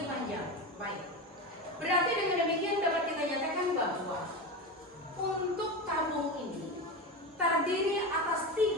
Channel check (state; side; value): normal; both; correlation 0.21